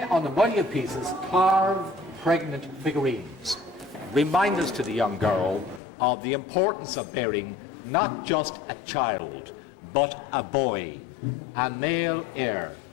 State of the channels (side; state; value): right; drops out; at 5.8 s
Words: on the money pieces, carved pregnant figurines, reminders to the young girl of the importance of bearing not just a child, but a boy, a male heir,